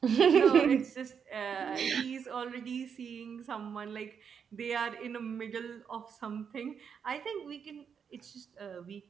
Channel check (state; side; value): quieter; left; 7.0 dB